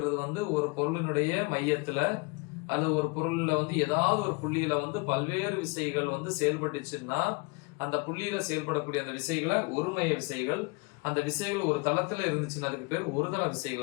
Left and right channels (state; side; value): quieter; right; 29.1 dB